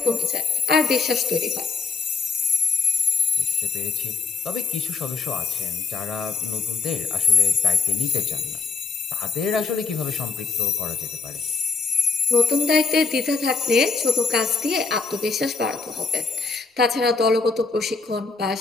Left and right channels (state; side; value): quieter; right; 4.6 dB